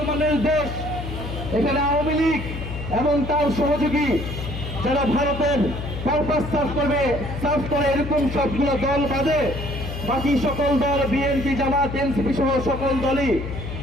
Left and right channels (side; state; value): left; noise; hum, 7 dB below the sound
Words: দেশ। এখানে আওয়ামী লীগ এবং তার সহযোগী যারা ভারতের পারপাস সার্ভ করে এরকম সবগুলো দল বাদে বাকি সকল দল, বিএনপি, জামাত, এনসিপি সহ সকল দলই